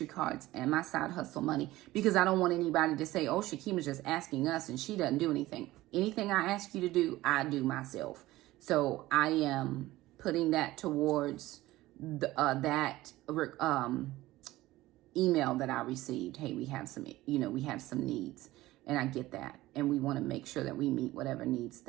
cards and my side hustle money, because I don't want anybody to say, oh, Shakema's just asking us and she doesn't do anything. Anything I ask you to do, I do myself. So I am putting that towards that email that I received. Hey, we have some needs. And I get that. And we want to make sure that we meet whatever needs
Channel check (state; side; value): quieter; left; 17.3 dB